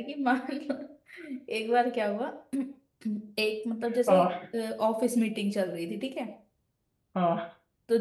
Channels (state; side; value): identical; both; correlation 1.00